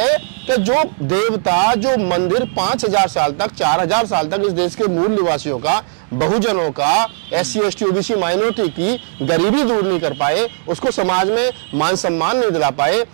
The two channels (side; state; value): left; silent; digital silence